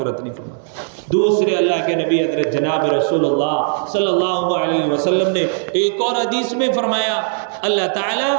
نہیں فرماتا. دوسرے اللہ کے نبی حضرت جناب رسول اللہ صلی اللہ علیہ وسلم نے ایک اور حدیث میں فرمایا اللہ تعالیٰ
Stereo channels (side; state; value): left; silent; digital silence